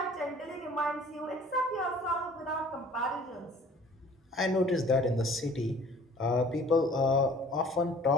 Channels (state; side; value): normal; both; correlation 0.50